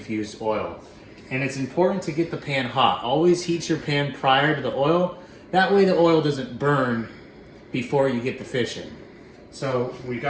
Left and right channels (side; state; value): both; identical; correlation 1.00